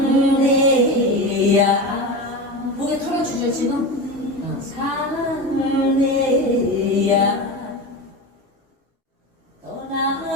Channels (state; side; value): normal; both; correlation 0.24